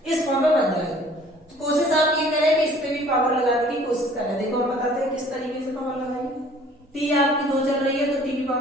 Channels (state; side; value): normal; both; correlation 0.53